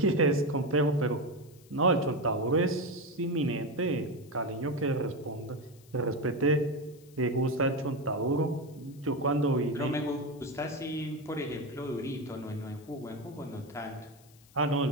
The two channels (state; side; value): noise; left; hiss, 27 dB below the sound